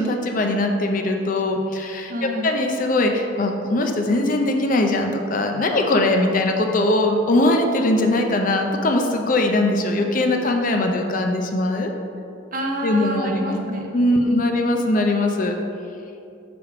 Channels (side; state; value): both; normal; correlation 0.45